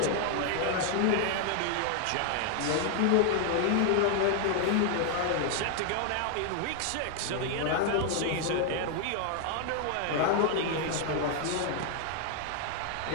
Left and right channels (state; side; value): different; both; correlation 0.00